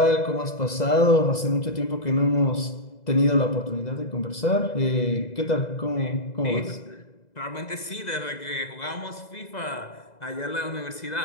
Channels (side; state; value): right; late; 2.0 ms